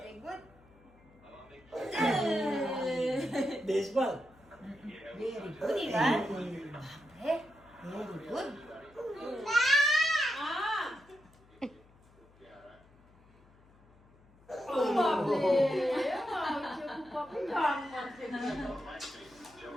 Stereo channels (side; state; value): left; noise; hum, 28 dB below the sound